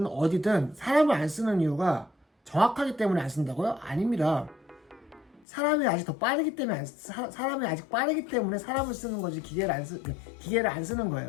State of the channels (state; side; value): drops out; right; at 5.5 s